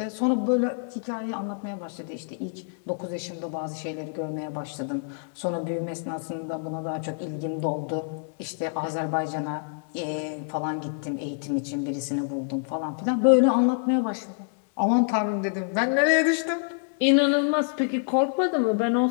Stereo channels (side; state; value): right; silent; digital silence